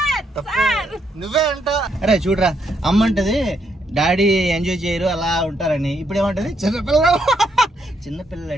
నువ్వే అంటా. అరే చూడరా, అమ్మ అంటది డాడీ ఎంజాయ్ చేయరు అలా ఉంటారని. ఇప్పుడు ఏమంటది చిన్నపిల్లలు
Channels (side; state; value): both; normal; correlation 0.76